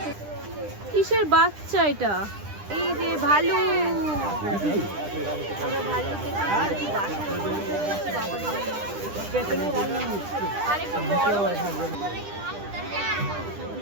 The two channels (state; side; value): late; left; 9.9 ms